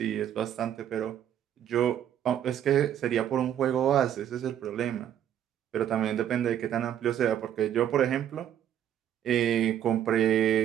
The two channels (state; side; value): quieter; left; 10.3 dB